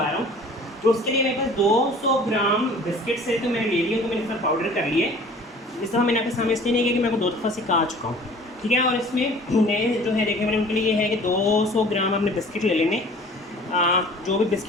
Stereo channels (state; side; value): normal; both; correlation 0.48